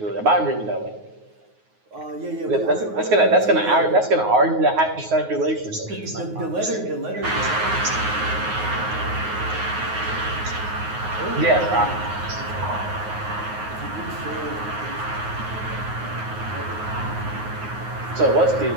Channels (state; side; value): late; left; 9.5 ms